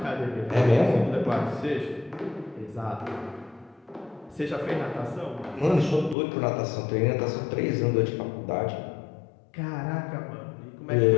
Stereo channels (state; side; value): drops out; right; at 6.2 s